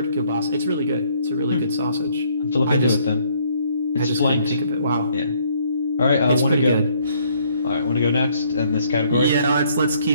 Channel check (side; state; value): both; inverted; correlation -0.65